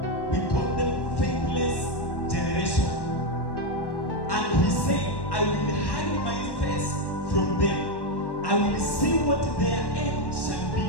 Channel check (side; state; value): right; late; 1.1 ms